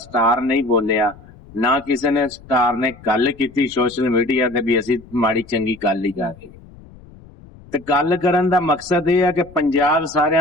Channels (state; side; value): noise; left; rumble, 22 dB below the sound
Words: ਨਹੀਂ ਬੋਲਿਆ, ਨਾ ਕਿਸੇ ਨੇ ਸਟਾਰ ਨੇ ਗੱਲ ਕੀਤੀ ਸੋਸ਼ਲ ਮੀਡੀਆ ਤੇ ਵੀ ਅਸੀਂ ਮਾੜੀ ਚੰਗੀ ਗੱਲ ਹੀ ਕਰ ਰਹੇ। ਤੇ ਗੱਲ ਕਰਨ ਦਾ ਮਕਸਦ ਇਹ ਹੈ ਕਿ ਪੰਜਾਬ